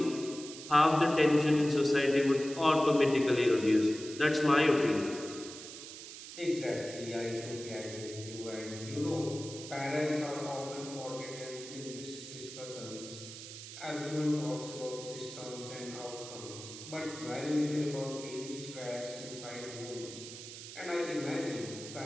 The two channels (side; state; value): right; noise; hiss, 12 dB below the sound